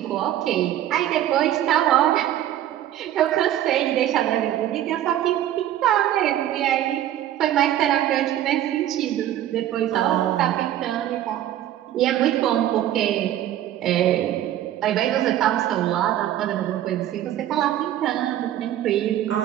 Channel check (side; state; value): left; quieter; 12.2 dB